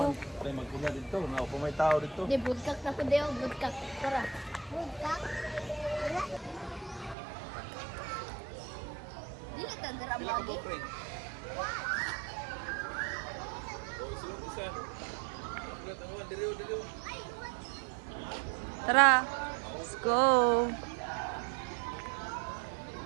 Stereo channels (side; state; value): left; drops out; at 7.2 s